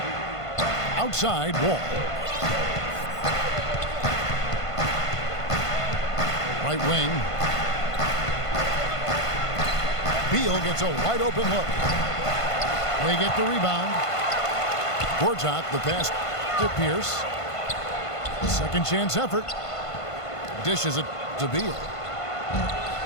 Outside Wall. Right wing. Beal gets a wide open look. They get the rebound. Gortat, the pass to Pierce. Second chance effort. Dishes it to Beal.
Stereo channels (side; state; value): right; late; 1.5 ms